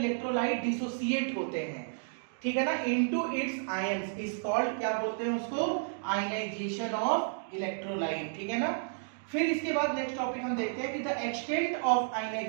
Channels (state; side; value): silent; left; digital silence